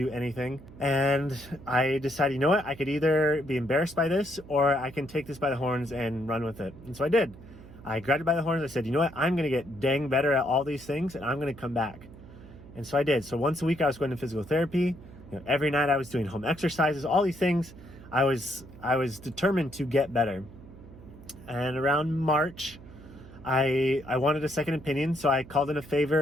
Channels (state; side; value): noise; right; hum, 18 dB below the sound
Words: anything. And I decided, you know what? I could either be embarrassed by this, or I can take this by the horns and run with it. And so I did. I grabbed it by the horns. I said, you know what? I'm going to get dang better at all these things, and I'm going to come back. And so I did. So once a week, I was going to physical therapy. Every night, I was doing home exercises, all these things. I was determined to get better. And around March, I wanted a second opinion, so I called in a